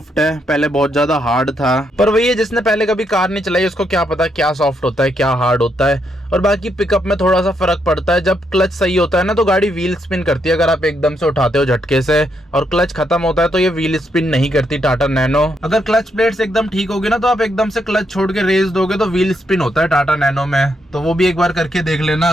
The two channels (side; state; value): both; normal; correlation 0.78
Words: है, पहले बहुत ज्यादा हार्ड था। पर वही है, जिसने पहले कभी कार नहीं चलाई उसको क्या पता क्या सॉफ्ट होता है क्या हार्ड होता है। और बाकी पिकअप में थोड़ा सा फर्क पड़ता है। जब क्लच सही होता है ना तो गाड़ी व्हील स्पिन करती है, अगर आप एकदम से उठाते हो झटके से। और क्लच खत्म होता है तो ये व्हील स्पिन नहीं करती टाटा नैनो। अगर क्लच प्लेट्स एकदम ठीक होगी ना तो आप एकदम से क्लच छोड़ के रेस दोगे तो व्हील स्पिन होता है टाटा नैनो में। तो वो भी एक बार करके देख लेना।